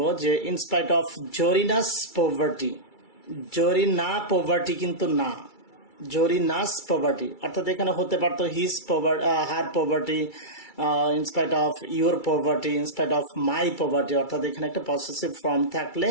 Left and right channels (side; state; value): right; late; 2.3 ms